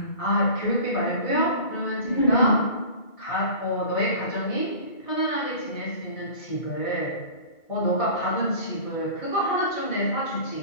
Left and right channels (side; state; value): right; late; 2.3 ms